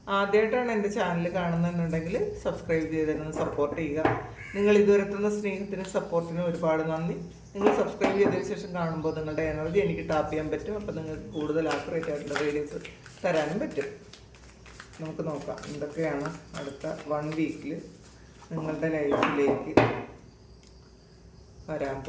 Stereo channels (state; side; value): identical; both; correlation 1.00